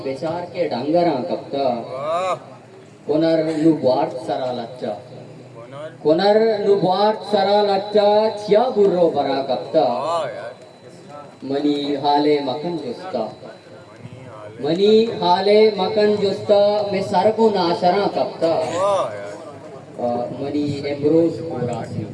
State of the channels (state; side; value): identical; both; correlation 1.00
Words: बेचार के डंगरा कप्ता कोनर नुबार्ट सरा लच्चा कोनर नुबार्ट सरा लच्चा छिया बुर्रो बरा कप्ता मनी हाले मकन जुस्ता मनी हाले मकन जुस्ता में सरगु नाशरा कप्ता मनी एम्ब्रोज कोरासिन